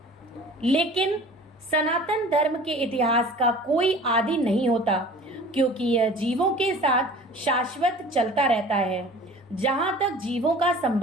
लेकिन सनातन धर्म के इतिहास का कोई आदि नहीं होता, क्योंकि यह जीवों के साथ शाश्वत चलता रहता है। जहाँ तक जीवों का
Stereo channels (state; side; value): normal; both; correlation 0.44